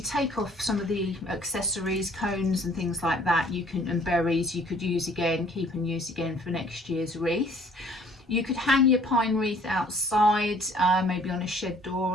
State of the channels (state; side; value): normal; both; correlation 0.56